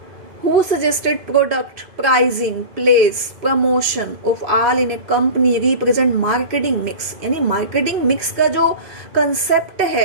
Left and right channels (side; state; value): left; late; 2.5 ms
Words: Who suggested product, pricing, place, promotion of all in a company represent marketing mix? यानी मार्केटिंग मिक्स का जो कंसेप्ट